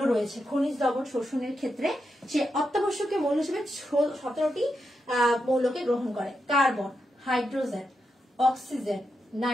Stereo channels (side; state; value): both; normal; correlation 0.86